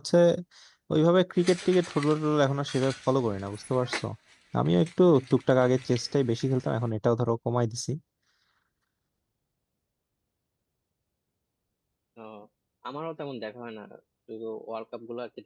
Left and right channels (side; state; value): both; identical; correlation 1.00